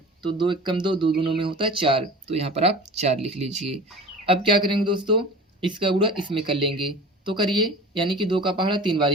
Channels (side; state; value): both; normal; correlation 0.38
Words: तो 2 1 कम 2, 2 दूनों में होता है 4, तो यहाँ पर आप 4 लिख लीजिए। अब क्या करेंगे दोस्तों, इसका गुणा इसमें कर लेंगे, तो करिए, यानी कि 2 का पहाड़ा 3